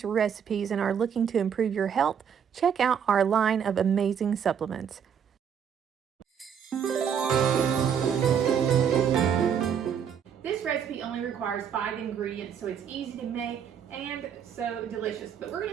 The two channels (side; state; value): left; quieter; 7.8 dB